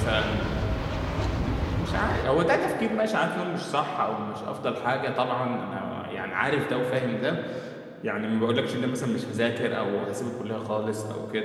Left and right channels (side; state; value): both; identical; correlation 1.00